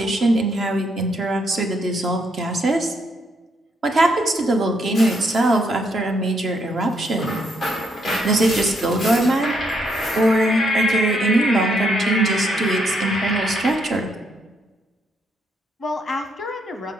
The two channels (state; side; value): normal; both; correlation 0.75